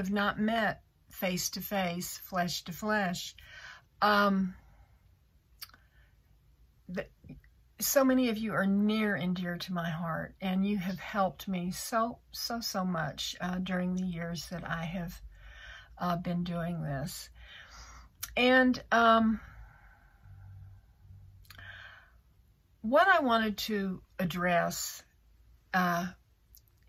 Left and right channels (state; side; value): identical; both; correlation 1.00